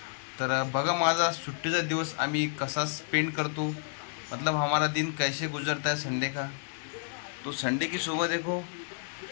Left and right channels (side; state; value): right; silent; digital silence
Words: तर बघा माझा सुट्टीचा दिवस आम्ही कसा स्पेंड करतो, मतलब हमारा दिन कैसे गुजरता है संडे का. तो संडे की सुबह देखो,